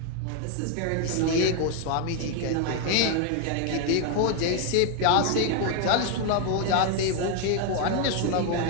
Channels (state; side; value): different; both; correlation 0.01